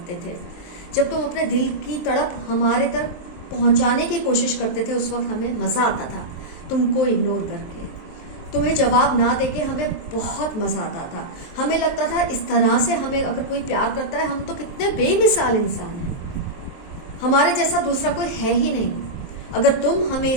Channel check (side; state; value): right; late; 23 ms